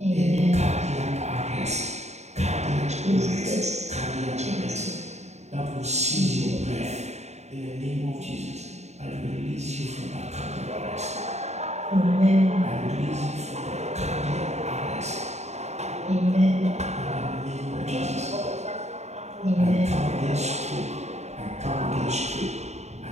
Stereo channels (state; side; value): late; left; 0.32 ms